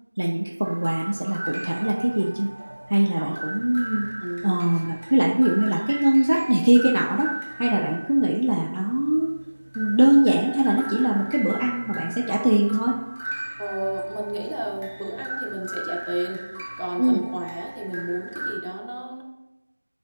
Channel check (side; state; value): both; inverted; correlation -1.00